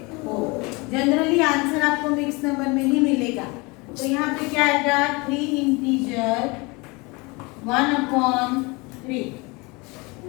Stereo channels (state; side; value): quieter; right; 26.6 dB